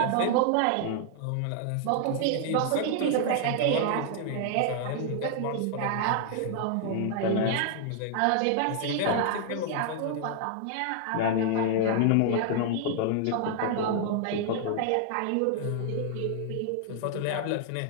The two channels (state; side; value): different; both; correlation 0.00